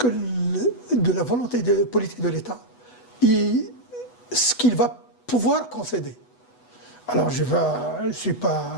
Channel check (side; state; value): right; late; 8.1 ms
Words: la volonté politique de l'État et ce qu'il va pouvoir concéder. Alors, je ne suis